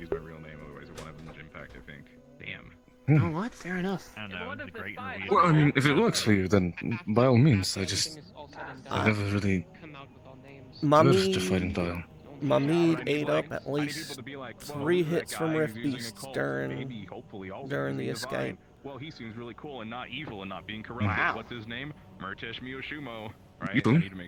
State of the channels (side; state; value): both; identical; correlation 1.00